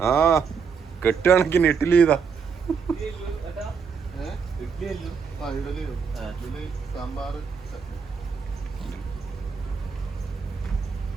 ആ കെട്ടുകണക്കിന് ഇഡ്ഡലി. ഇതാ സാമ്പാർ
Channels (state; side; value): quieter; left; 6.0 dB